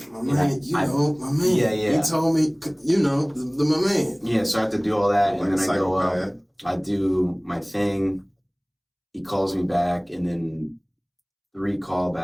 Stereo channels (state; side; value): identical; both; correlation 1.00